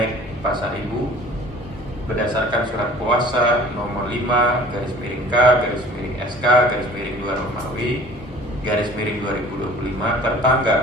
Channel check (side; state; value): both; normal; correlation 0.48